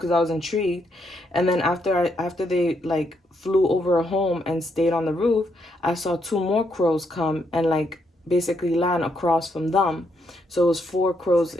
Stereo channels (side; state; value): both; normal; correlation 0.76